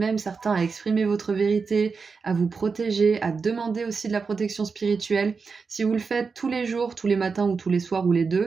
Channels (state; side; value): quieter; left; 5.0 dB